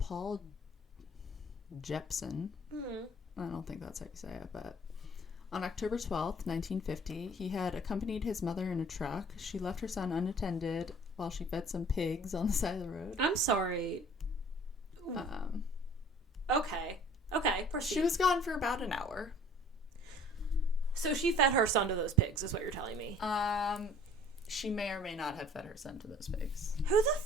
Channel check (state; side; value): normal; both; correlation 0.51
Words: Jepson. Mm-hmm. I don't think that's how you say it, but on October 12th, 1950, he had accompanied his mother in a truck. She left her son unattended while she fed some pigs on the side of the road. I'm sorry. Okay, proceed. She was gone for about an hour. So she fed her son to those pigs, is what you're telling me. She may or may not have fed her son to those pigs. Who